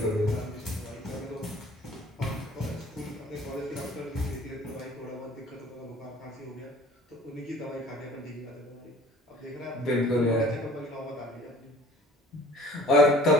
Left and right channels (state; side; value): normal; both; correlation 0.48